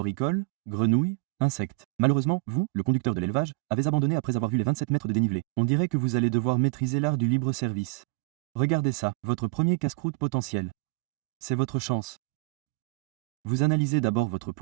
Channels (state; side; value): quieter; left; 23.7 dB